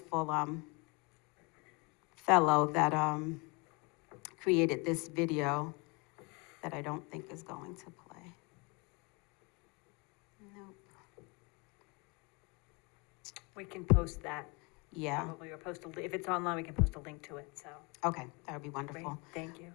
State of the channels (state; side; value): quieter; right; 29.6 dB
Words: fellow that created this video that I don't think is going to play. Nope. We can post that. Yeah, Probably, or post if it's online, we can post a link to it, so. okay, that would be Great, wonderful. thank you.